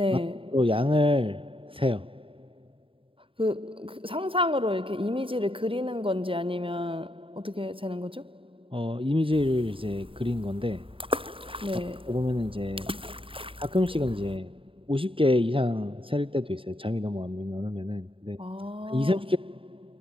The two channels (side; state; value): left; late; 0.26 ms